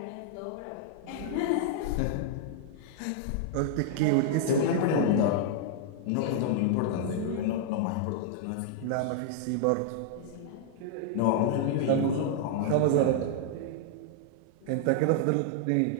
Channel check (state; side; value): different; both; correlation -0.01